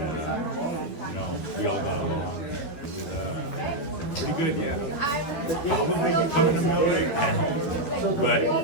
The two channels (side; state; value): right; late; 12 ms